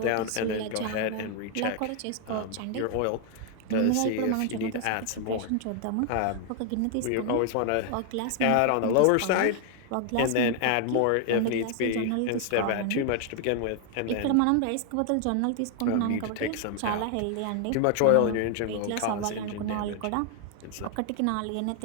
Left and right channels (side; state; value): both; different; correlation 0.00